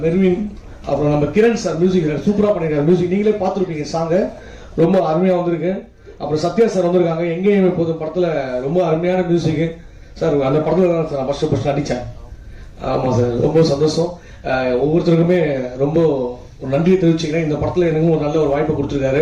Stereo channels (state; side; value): identical; both; correlation 1.00